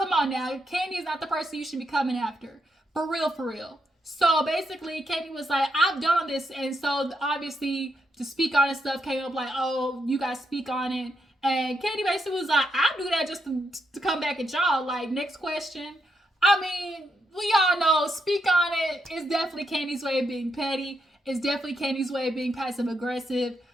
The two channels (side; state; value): both; normal; correlation 0.81